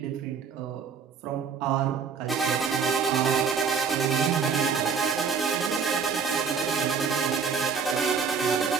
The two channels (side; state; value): left; quieter; 6.0 dB